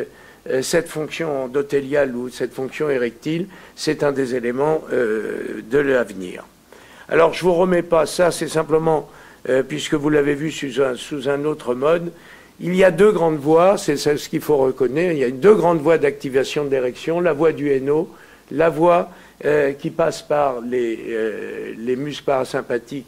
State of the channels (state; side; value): identical; both; correlation 1.00